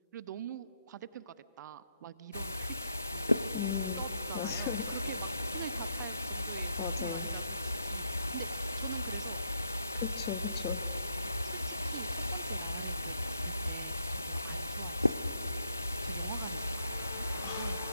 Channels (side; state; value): both; inverted; correlation -0.76